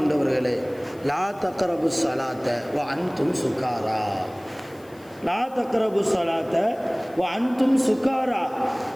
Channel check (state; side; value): noise; left; hiss, 27 dB below the sound